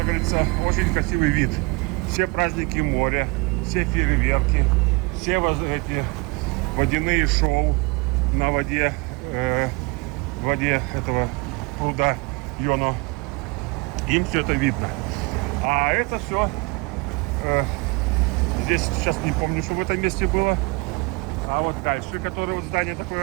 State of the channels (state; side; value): quieter; left; 27.9 dB